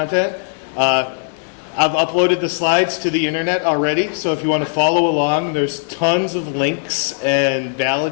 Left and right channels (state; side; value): silent; right; 67 dB below the other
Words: I've uploaded the slides to the internet already, so if you want to follow along, there's tons of links and